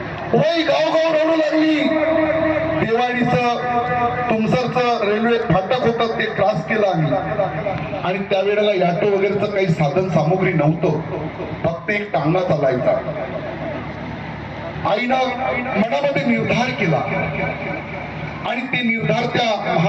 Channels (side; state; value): both; identical; correlation 1.00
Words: वय गाव रडू लागली. देवाडीचं तुमसरचं रेल्वे फाटक होतं ते क्रॉस केलं आम्ही, आणि त्यावेळेला ऑटो वगैरेचं काही साधन सामुग्री नव्हतं, फक्त एक टांगा चालायचा. आईनं मनामध्ये निर्धार केला आणि ते निर्धार त्या